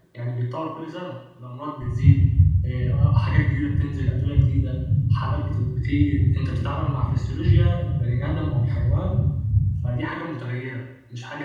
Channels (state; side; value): identical; both; correlation 1.00